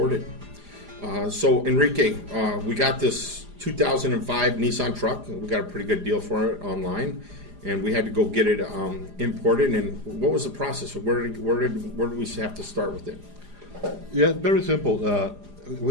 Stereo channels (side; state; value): left; late; 4.9 ms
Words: So Enrique, we got this 2005 Nissan truck. We got a pretty good deal for it online, and we had to go get it imported. And what was the process? Where did we have to start with it? Yeah, very simple.